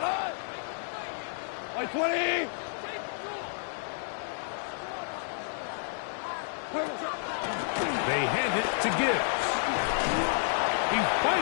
Like 20. They hand it to Gibbs. He's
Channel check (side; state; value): right; silent; digital silence